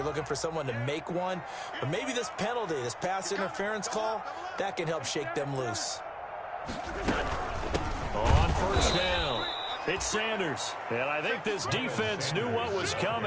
looking for someone to make one. But maybe this penalty, this pass interference call, that can help shake them loose. On 1st down, it's Sanders. And I think this defense knew what was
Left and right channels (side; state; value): both; identical; correlation 1.00